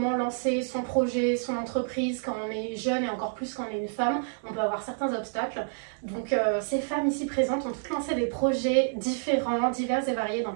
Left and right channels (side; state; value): left; silent; 56 dB below the other